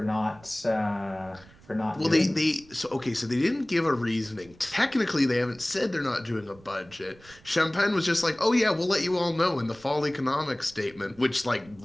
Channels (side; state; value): right; noise; rumble, 24 dB below the sound